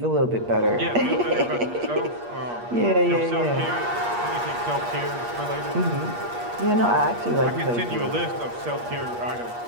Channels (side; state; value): left; late; 8.5 ms